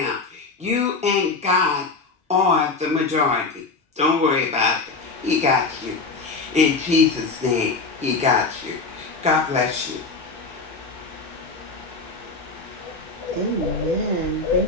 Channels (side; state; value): right; quieter; 3.9 dB